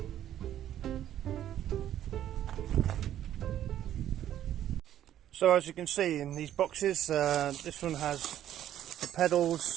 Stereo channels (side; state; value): left; quieter; 11.5 dB